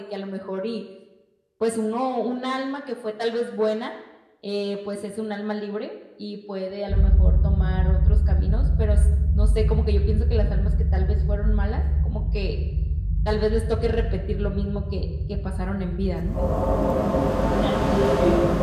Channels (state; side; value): identical; both; correlation 1.00